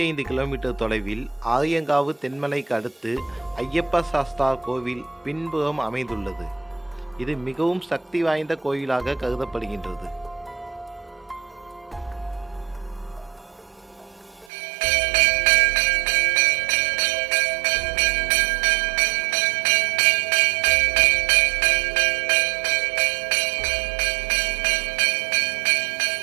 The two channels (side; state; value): left; drops out; at 14.5 s